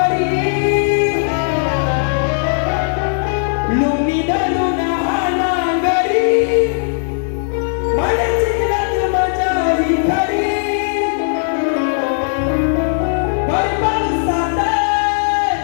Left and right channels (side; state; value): right; silent; digital silence